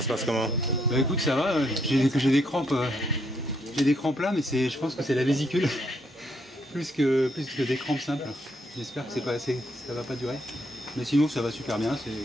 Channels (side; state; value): both; normal; correlation 0.74